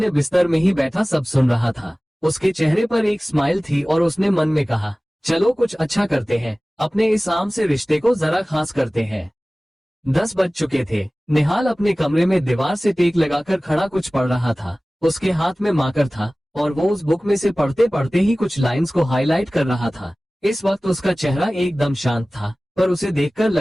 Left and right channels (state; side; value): normal; both; correlation 0.98